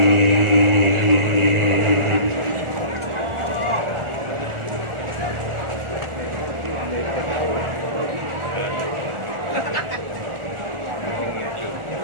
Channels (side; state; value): left; late; 1.4 ms